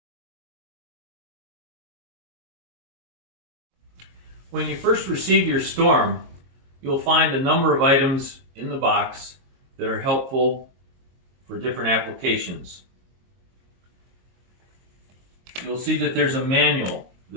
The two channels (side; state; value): left; late; 22 ms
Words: When you first receive your storm, you'll find a number of items in the box that are helpful for different applications. You'll see that there's a manual.